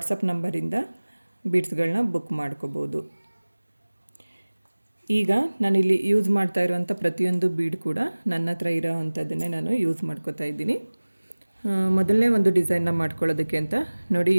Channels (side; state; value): both; inverted; correlation -1.00